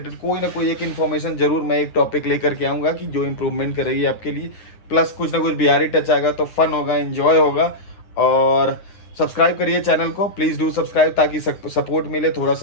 कोई ना कोई एक इन्फॉर्मेशन जरूर मैं एक टॉपिक लेकर के आऊँगा, कि जो इम्प्रूवमेंट करेगी आपके लिए। प्लस कुछ ना कुछ बिहारी टच आएगा, तो फन होगा, एंजॉय होगा। और सब्सक्राइब करिए चैनल को, प्लीज़ डू सब्सक्राइब, ताकि सपोर्ट मिले, थोड़ा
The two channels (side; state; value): right; late; 9.7 ms